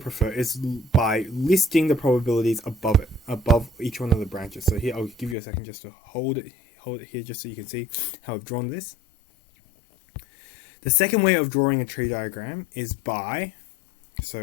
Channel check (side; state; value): right; drops out; at 5.4 s